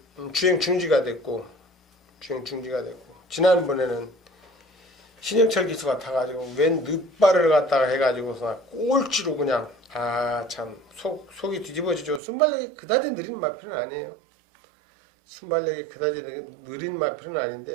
주행 중지가 됐고, 지난번에는 신영철 기수가 타가지고 웬 늦발을 갖다가 해가지고서 꼴찌로 그냥, 참 속이 뒤집어지죠. 순발력이 그다지 느린 마필은 아니에요. 순발력이 그다지 느린 마필은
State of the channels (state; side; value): drops out; left; at 12.2 s